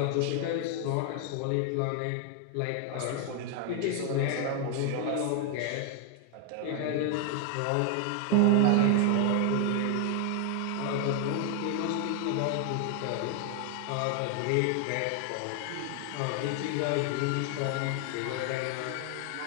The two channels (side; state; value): both; different; correlation 0.00